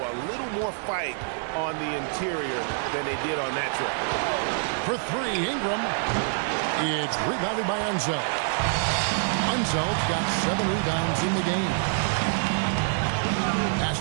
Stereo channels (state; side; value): silent; left; 57 dB below the other